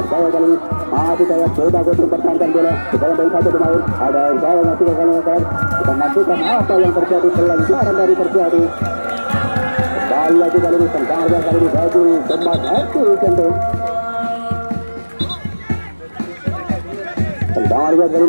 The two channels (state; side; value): inverted; both; correlation -1.00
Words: Jaya kali ini masih Jaya coba Kuntung pertahankan bola dibayang-bayang satu pemain ada Jaya masih ke kanan kita nantikan apa yang terjadi pelanggaran dari terjadi kembali kembali lagi kali ini tendangan kali ini bagi Kemas FC tentu. Tendangan kali